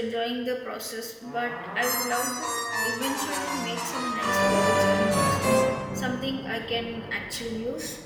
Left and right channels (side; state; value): both; identical; correlation 1.00